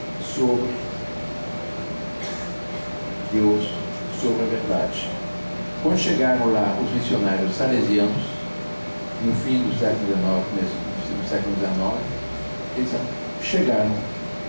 sobre Deus, sobre a verdade. Quando chegaram lá os missionários salesianos, no fim do século XIX, começo do século XIX, eles chegaram,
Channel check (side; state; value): both; inverted; correlation -1.00